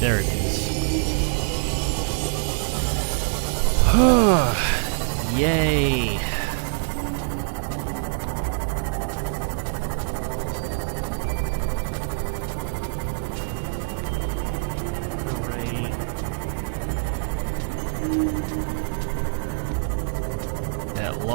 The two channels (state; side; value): silent; left; 62 dB below the other